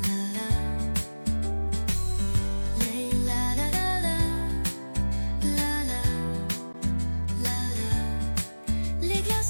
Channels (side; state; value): both; inverted; correlation -1.00